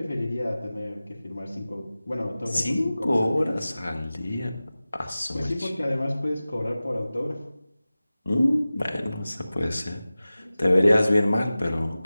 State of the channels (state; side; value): inverted; both; correlation -0.97